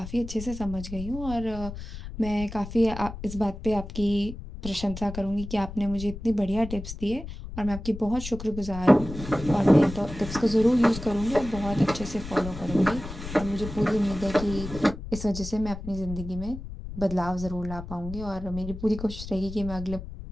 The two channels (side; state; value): left; noise; rumble, 10 dB below the sound